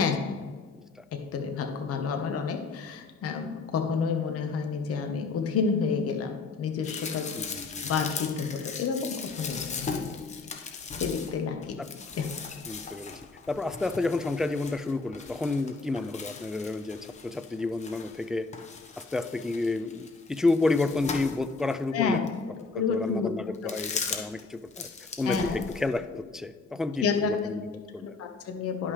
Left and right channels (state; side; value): quieter; right; 4.0 dB